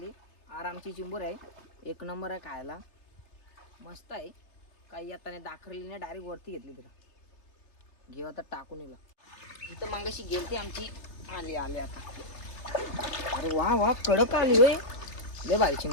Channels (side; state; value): right; late; 3.3 ms